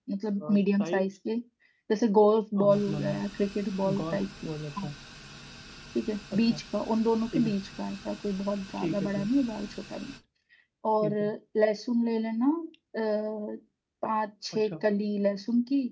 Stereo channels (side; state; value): both; identical; correlation 1.00